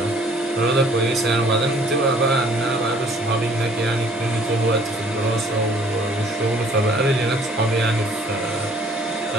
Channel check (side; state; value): both; normal; correlation 0.57